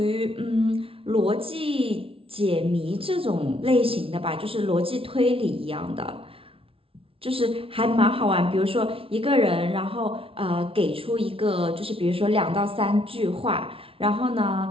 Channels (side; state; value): left; late; 0.26 ms